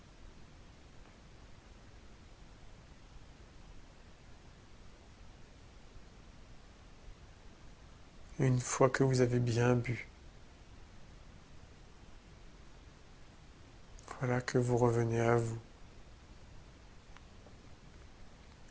Une fois que vous avez bien bu, voilà que vous revenez à vous.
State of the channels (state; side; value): identical; both; correlation 1.00